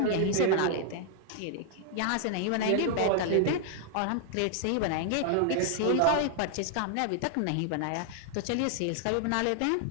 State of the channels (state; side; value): different; both; correlation -0.01